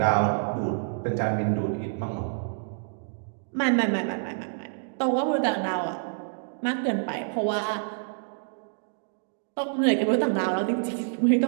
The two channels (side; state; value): left; silent; digital silence